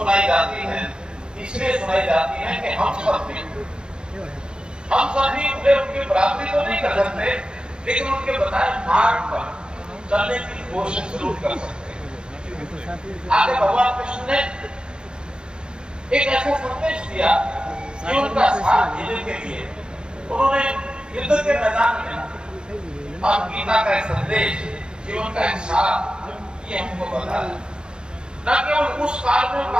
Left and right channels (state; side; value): late; left; 0.049 ms